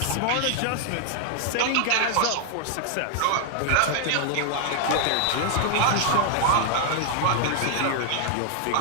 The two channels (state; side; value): different; both; correlation 0.00